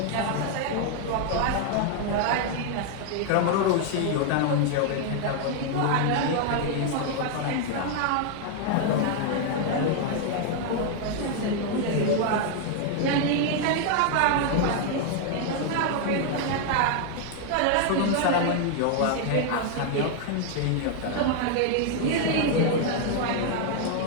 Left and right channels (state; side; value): different; both; correlation 0.00